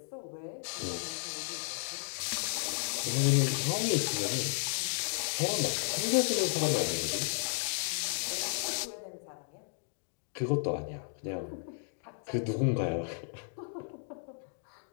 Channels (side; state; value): right; silent; digital silence